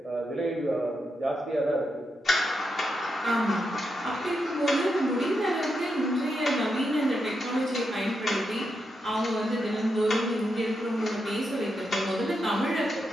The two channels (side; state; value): both; normal; correlation 0.84